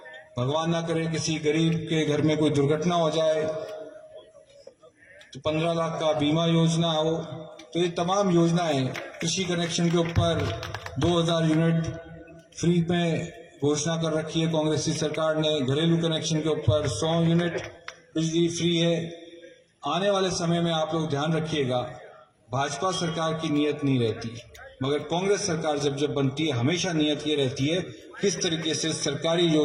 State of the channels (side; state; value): both; identical; correlation 1.00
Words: भगवान ना करे किसी गरीब के घर में कोई दुर्घटना हो जाए तो 15 लाख का बीमा योजना हो। तो ये तमाम योजनाएं, कृषि कनेक्शन के ऊपर 2000 यूनिट फ्री में घोषणा कर रखी है कांग्रेस की सरकार ने। घरेलू कनेक्शन के ऊपर 100 यूनिट बिजली फ्री है। आने वाले समय में आप लोग ध्यान रखिएगा, भाजपा सरकार की नीयत नहीं रहती, मगर कांग्रेस सरकार जब बनती है हमेशा नियत ये रहती है किस तरीके से सरकारी